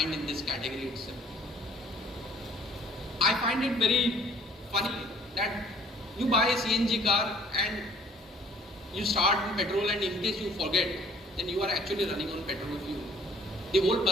in this category itself. I find it very funny that you buy a CNG car and you start in petrol, and in case you forget, then you are actually running on petrol fuel. The whole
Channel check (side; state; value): both; normal; correlation 0.55